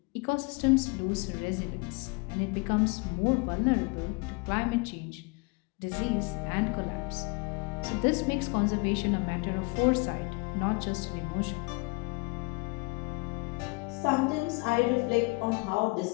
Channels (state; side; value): quieter; right; 29.8 dB